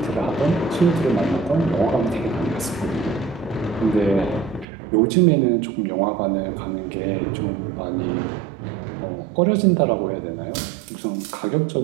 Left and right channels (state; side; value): drops out; left; at 4.7 s